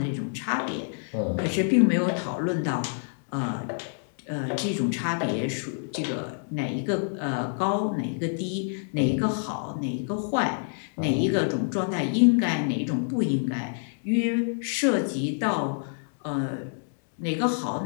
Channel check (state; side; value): silent; right; 60 dB below the other